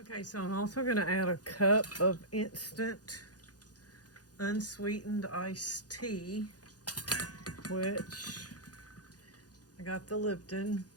so I'm also going to add a cup of instant unsweetened iced tea, which I got the Lipton.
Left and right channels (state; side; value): late; right; 0.68 ms